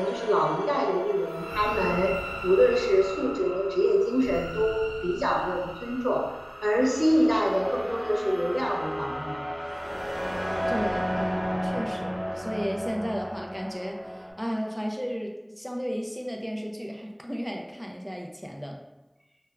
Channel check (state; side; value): identical; both; correlation 1.00